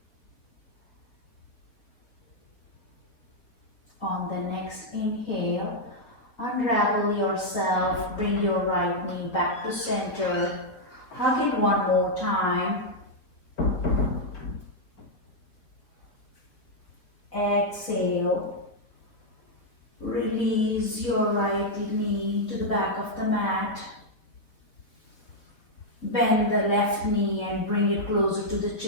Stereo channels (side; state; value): right; late; 4.1 ms